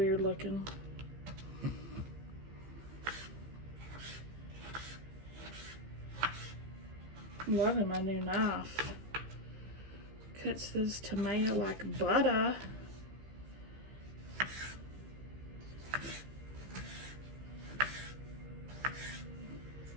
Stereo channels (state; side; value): late; left; 15 ms